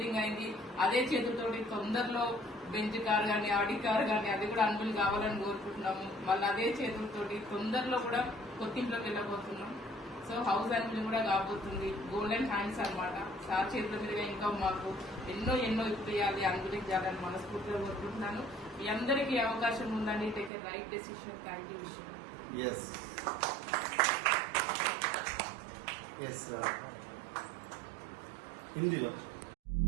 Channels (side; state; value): left; drops out; at 20.5 s